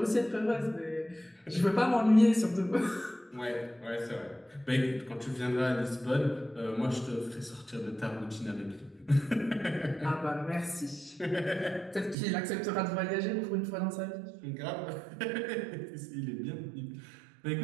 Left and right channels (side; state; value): left; drops out; at 12.2 s